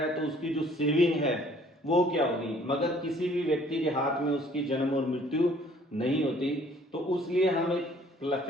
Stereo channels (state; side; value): normal; both; correlation 0.58